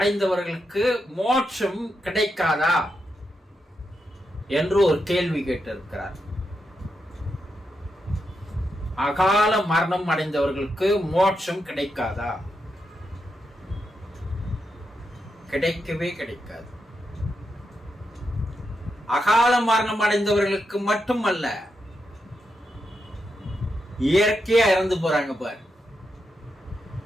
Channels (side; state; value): both; normal; correlation 0.85